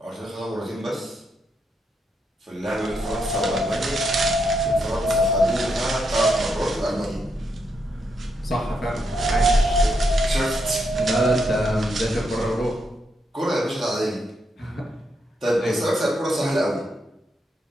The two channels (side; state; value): both; normal; correlation 0.80